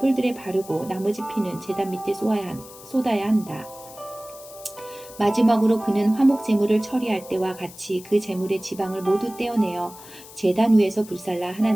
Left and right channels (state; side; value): noise; left; hiss, 18 dB below the sound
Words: 바르고 나머지 피는 제단 밑에 쏟아야 한다. 마지막으로 그는 화목 제물을 처리할 때와 같이 그 제물의 지방을 모두 떼어내어 제단 위에서 불살라